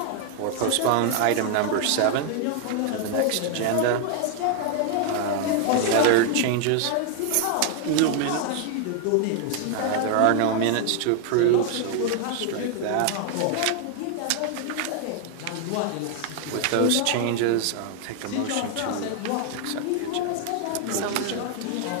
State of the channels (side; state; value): both; different; correlation 0.00